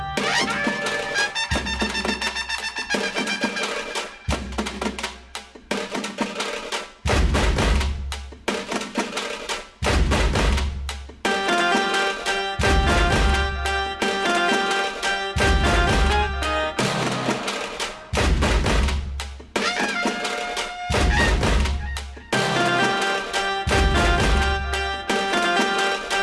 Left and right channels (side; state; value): both; identical; correlation 1.00